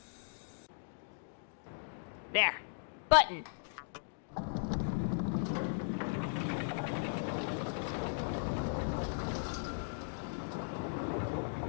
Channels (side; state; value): right; silent; digital silence